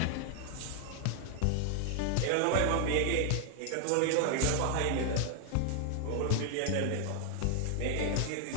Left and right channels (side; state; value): both; different; correlation 0.00